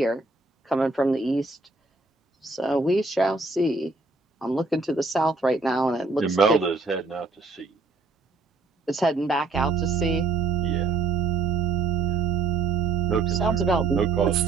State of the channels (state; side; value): quieter; left; 3.9 dB